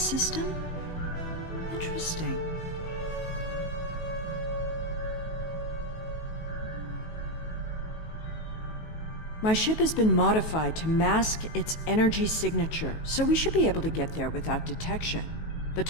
Interesting. My ship has been modified to mask its energy signature, so we should be able to get there without detection. The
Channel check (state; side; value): late; right; 19 ms